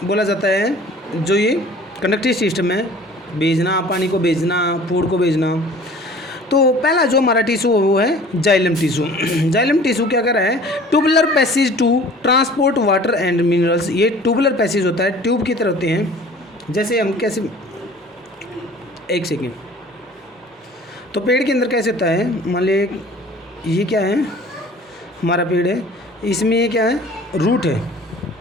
बोला जाता है। जो ये कंडक्टिव सिस्टम है, भेजना, पानी को भेजना, फूड को भेजना। तो पहला जो हमारा टिश्यू वो है जाइलम टिश्यू। जाइलम टिश्यू क्या कर रहा है, tubular passage to transport water and minerals. ये ट्यूबुलर पैसेज होता है, ट्यूब की तरह होते हैं। जैसे हम कैसे, एक सेकेंड, तो पेड़ के अंदर कैसे होता है, मान लीजिए ये क्या है, हमारा पेड़ है, इसमें ये क्या है, रूट है,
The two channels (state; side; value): normal; both; correlation 0.47